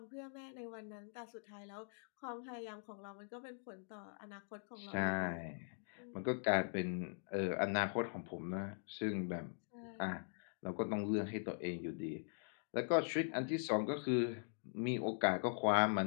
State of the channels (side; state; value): right; silent; digital silence